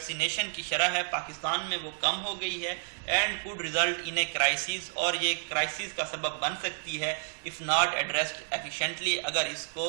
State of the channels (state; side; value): silent; left; digital silence